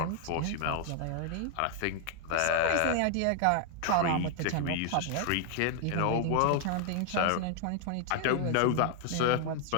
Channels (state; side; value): different; both; correlation 0.00